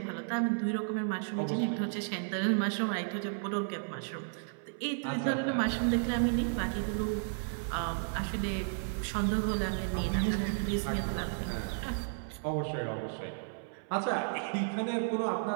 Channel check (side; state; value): left; silent; 56 dB below the other